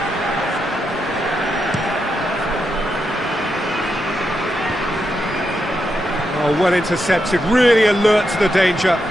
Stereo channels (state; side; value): normal; both; correlation 0.84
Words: Oh, well intercepted, really alert to the danger.